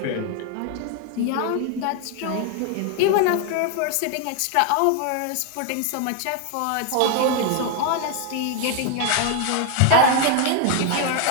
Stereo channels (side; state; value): both; different; correlation 0.01